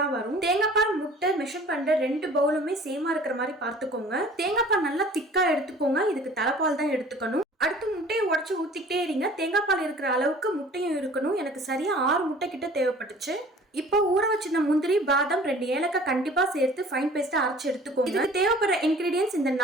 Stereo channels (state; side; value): normal; both; correlation 0.48